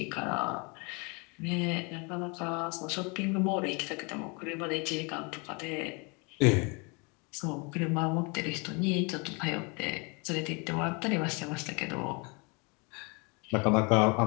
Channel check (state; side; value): quieter; right; 31.0 dB